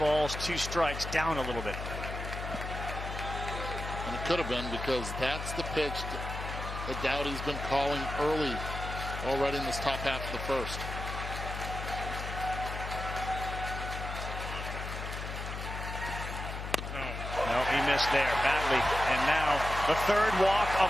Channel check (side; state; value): left; noise; hum, 6 dB below the sound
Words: 2 strikes, down a little bit. And it could have been, because that's the pitch that Dowdy's been calling early already in this top half of the first. No, he missed there badly. And now the third walk of